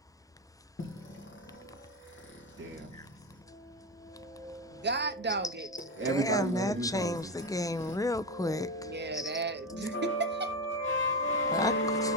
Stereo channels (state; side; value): normal; both; correlation 0.15